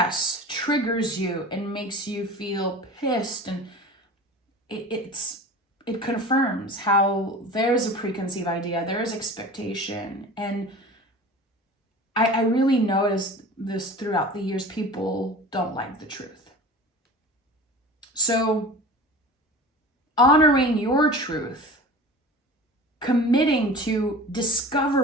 triggers you and makes you feel pissed, and it confirms how there's a preconceived idea, there's expectation. And I really noticed this throughout the years. People don't like the truth. So honoring your truth, committing to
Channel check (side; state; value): both; normal; correlation 0.37